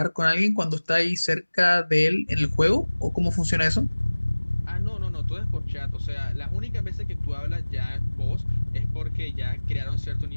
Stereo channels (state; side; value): inverted; both; correlation -1.00